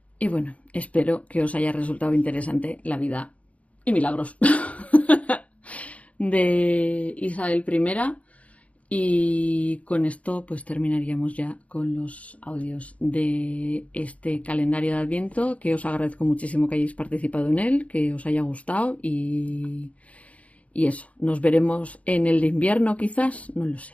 Y bueno, espero que os haya resultado interesante la vida y milagros de Isabel I, y con esto pues terminaríamos ya con los audios de este calendario de Adviento, que os agradezco muchísimo que hayáis participado en él, que os haya gustado, y eso, nos veremos en el de invierno quizás, no lo sé,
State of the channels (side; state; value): right; late; 0.066 ms